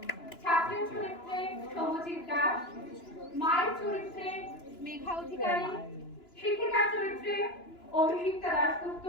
ছাত্রের চরিত্রে সৌমজিৎ দাস, মায়ের চরিত্রে মেঘা অধিকারী, শিক্ষিকার চরিত্রে অভিষিক্তা দাশগুপ্ত,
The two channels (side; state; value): right; late; 2.9 ms